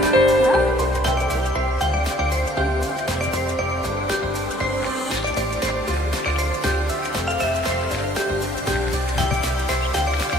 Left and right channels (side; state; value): both; normal; correlation 0.60